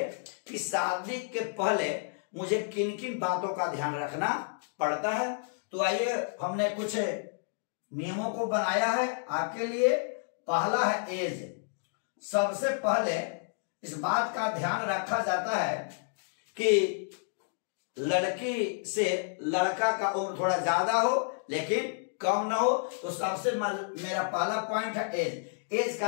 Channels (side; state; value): right; silent; digital silence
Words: कि शादी के पहले मुझे किन किन बातों का ध्यान रखना पड़ता है। तो आइए, हमने कुछ नियमों को बनाया है आपके लिए। पहला है एज। सबसे पहले इस बात का ध्यान रखा जाता है कि लड़की से लड़का का उम्र थोड़ा ज्यादा हो लेकिन कम ना हो। तो सबसे मेरा पहला पॉइंट है एज। एज